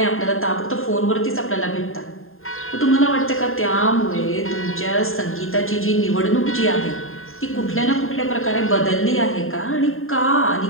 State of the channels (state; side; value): late; right; 0.61 ms